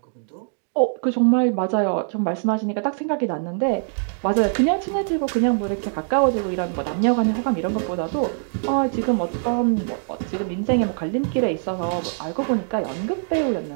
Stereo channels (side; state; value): left; silent; digital silence